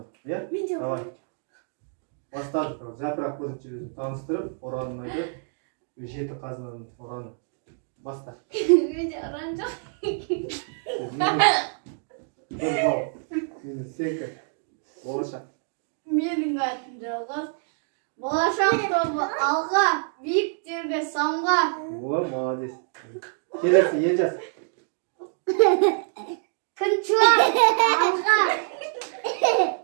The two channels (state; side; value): silent; left; 59 dB below the other